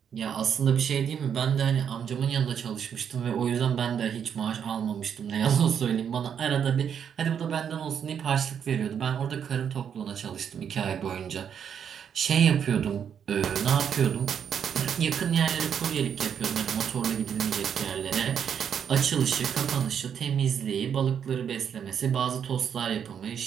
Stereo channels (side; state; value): left; quieter; 8.0 dB